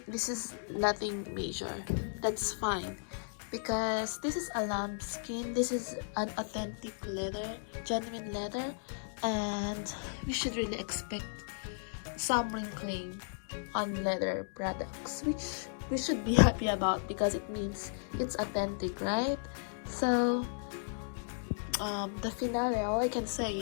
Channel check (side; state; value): right; silent; digital silence